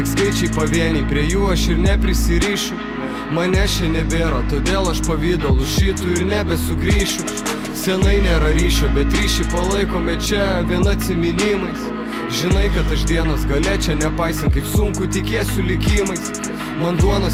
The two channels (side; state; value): both; identical; correlation 1.00